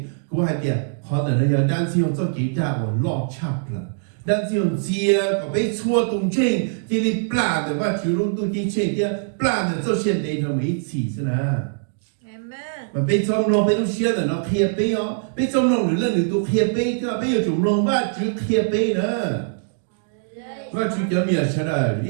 我还点，可能要担心做给家我落差了，担心接个被错动静，这里不拉的话，就弄都进去的，不拉的做现在就没起是呢。mà bây giờ nó bây giờ xe là nó kia bây giờ bây giờ nó nữa là tụ kia bây giờ bây giờ chúng nó mà chữ kia bây nữa và chữ cái miệng sẽ là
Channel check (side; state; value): left; silent; digital silence